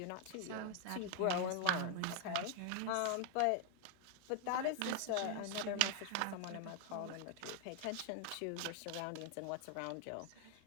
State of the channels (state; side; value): different; both; correlation 0.00